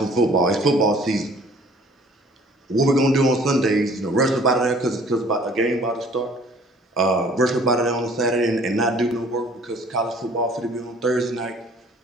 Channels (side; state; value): both; normal; correlation 0.53